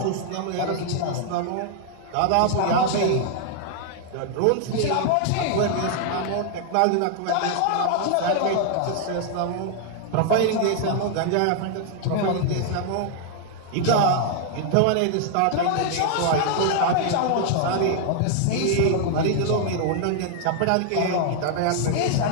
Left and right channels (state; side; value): different; both; correlation 0.00